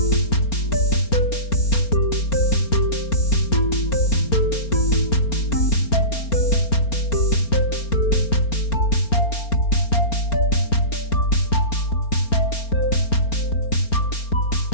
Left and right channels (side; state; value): right; late; 4.4 ms